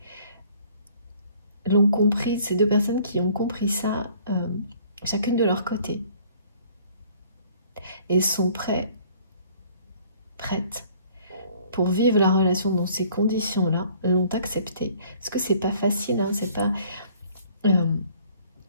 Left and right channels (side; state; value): both; inverted; correlation -0.56